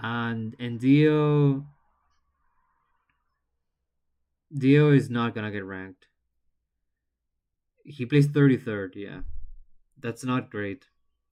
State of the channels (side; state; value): both; identical; correlation 1.00